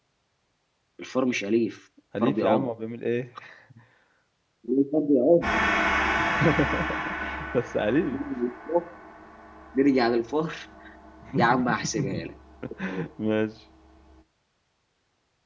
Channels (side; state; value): both; identical; correlation 1.00